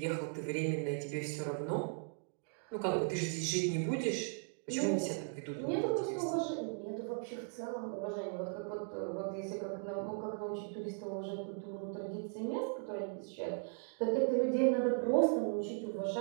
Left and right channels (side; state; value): left; silent; 53 dB below the other